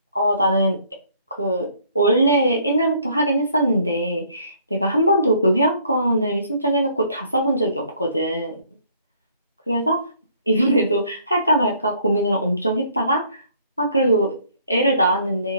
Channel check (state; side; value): inverted; both; correlation -0.62